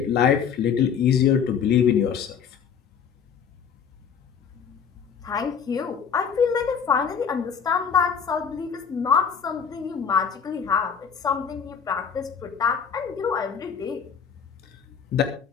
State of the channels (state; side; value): quieter; right; 6.9 dB